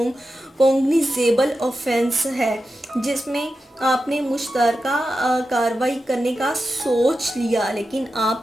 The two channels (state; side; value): normal; both; correlation 0.91